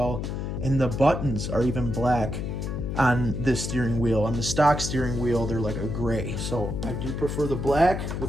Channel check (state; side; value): noise; left; hum, 4 dB below the sound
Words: And the buttons are even black on this steering wheel. On the stock steering wheel, they're like a gray. So I do prefer the black,